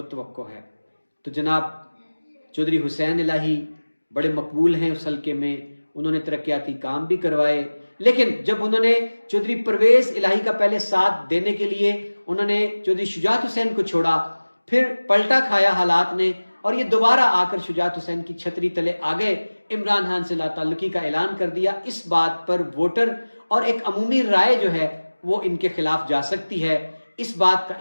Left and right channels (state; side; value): inverted; both; correlation -1.00